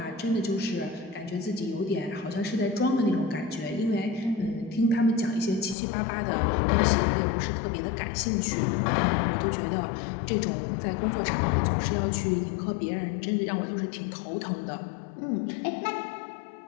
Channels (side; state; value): right; drops out; at 5.8 s